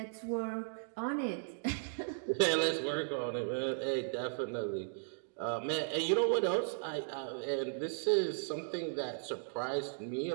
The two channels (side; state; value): left; silent; digital silence